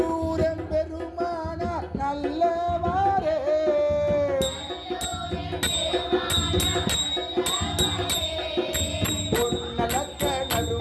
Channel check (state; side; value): identical; both; correlation 1.00